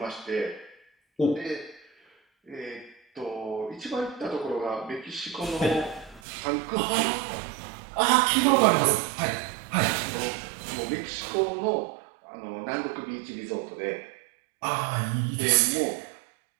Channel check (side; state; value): left; drops out; at 6.2 s